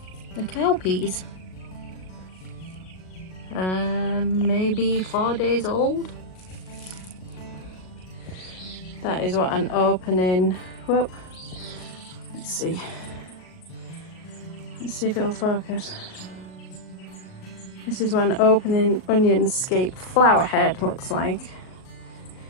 the cowpeas. Maybe 4 days old. That is what an opening. Whoop. Let's see if it'll focus. This is what an opening onion-scape flower head looks like.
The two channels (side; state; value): right; late; 38 ms